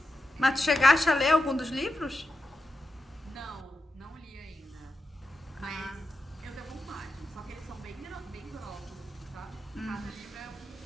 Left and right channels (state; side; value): normal; both; correlation 0.88